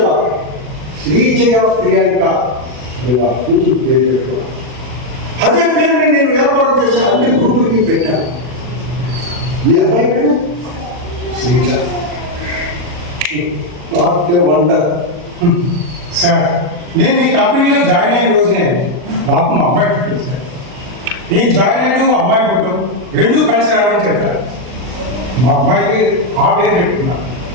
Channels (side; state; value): left; late; 40 ms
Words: శ్రీజయ ప్రియాంక అని వాళ్ళ కూతురు పేరు పెట్టుకున్నాను. అదే పేరుని నేను వ్యాపారం చేసే అన్ని గ్రూపులకి పెట్టాను. మీ అమ్మాయి పేరు Sreeja. What a wonder. Sir, నేను మీ కంపెనీలో జాయిన్ అయిన రోజునే నాకు మా అమ్మాయి పుట్టింది సార్. నేను జాయిన్ అయ్యాను, అమ్మాయి పుట్టడం రెండూ కలిసి రావడం చెప్పారు. మా అమ్మాయికి ఆ పేరు చెప్తున్నాను,